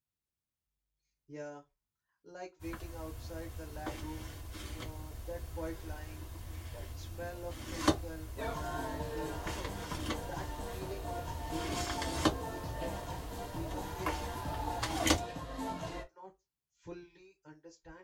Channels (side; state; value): both; identical; correlation 1.00